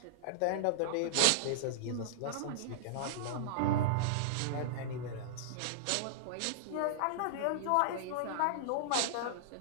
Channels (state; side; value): different; both; correlation -0.02